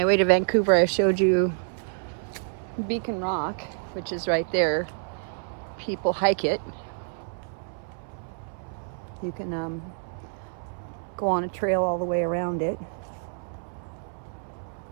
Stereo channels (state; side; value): silent; left; 60 dB below the other